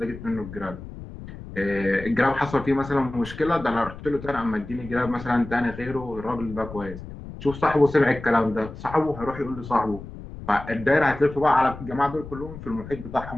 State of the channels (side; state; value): left; noise; rumble, 13 dB below the sound